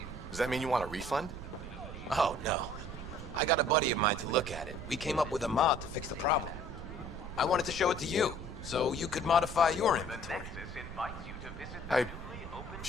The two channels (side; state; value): right; noise; rumble, 10 dB below the sound